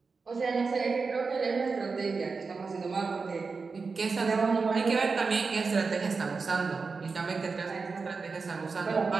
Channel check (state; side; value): quieter; left; 4.6 dB